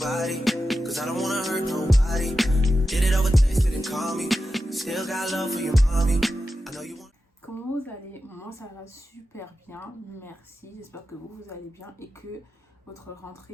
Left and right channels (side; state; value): both; normal; correlation 0.91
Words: Comment vous allez? Moi ça va super bien, merci. J'espère que vous allez bien et que votre